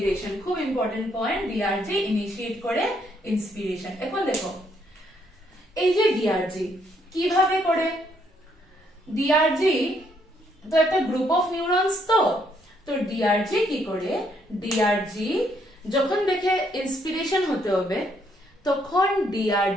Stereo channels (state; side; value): normal; both; correlation 0.71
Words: খুব ইম্পর্টেন্ট পয়েন্ট DRG ইনিশিয়েট করে ইন্সপিরেশন এখন দেখো এই যে DRG কিভাবে করে DRG তো একটা গ্রুপ অফ নিউরনস তো DRG কি করে DRG যখন দেখে ইন্সপিরেশন হতে হবে তখন